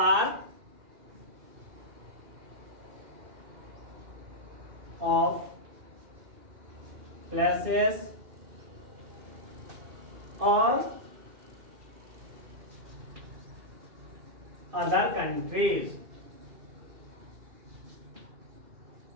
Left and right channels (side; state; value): left; late; 2.5 ms